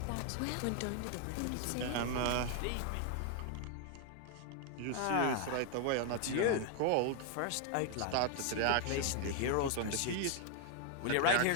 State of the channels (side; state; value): both; different; correlation 0.00